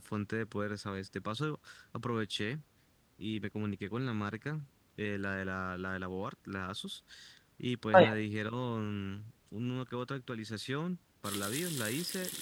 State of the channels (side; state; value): both; identical; correlation 1.00